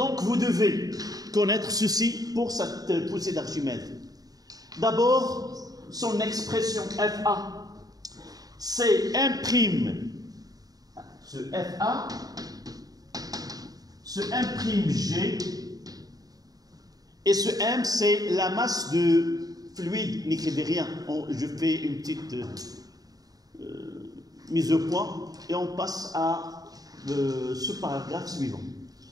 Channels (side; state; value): left; late; 0.18 ms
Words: vous devez connaître ceci pour cette poussée d'Archimède. D'abord, son expression FA, c'est 1', ce FA, ce 1'G, et ce M, c'est la masse de fluide, n'écrivez rien. Je fais une petite mise au point et on passe à ce paragraphe suivant.